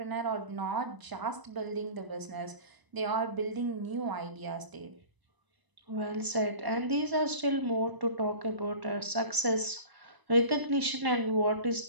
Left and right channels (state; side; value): late; left; 1.0 ms